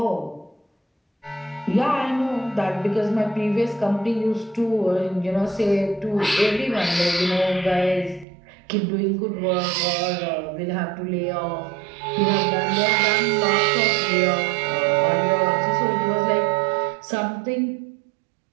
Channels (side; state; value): left; drops out; at 8.2 s